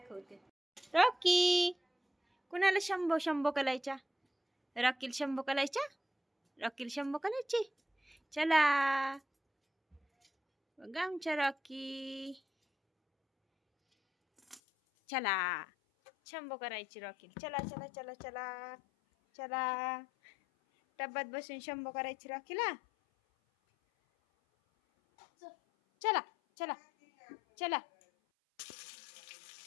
रॉकी, कुणाला शंभो शंभो करायच्या? रॉकील शंभो करायच्या? रॉकील शंभो करायची? चला बघा आमच्या रॉकी, चला शंभो करायची रॉकील. चला चला चला चला चला, टब्यात बसून शंभो करायची रॉकीला. चला चला चला.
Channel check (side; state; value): right; drops out; at 14.6 s